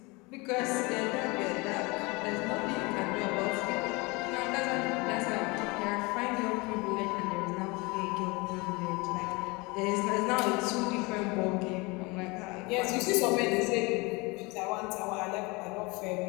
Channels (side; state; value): right; quieter; 25.9 dB